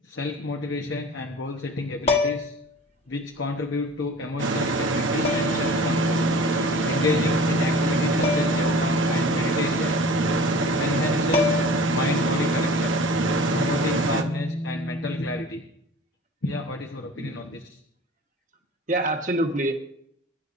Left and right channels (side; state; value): both; normal; correlation 0.42